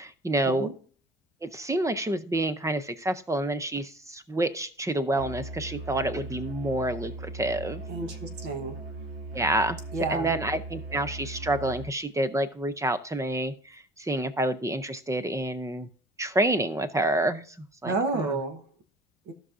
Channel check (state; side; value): normal; both; correlation 0.46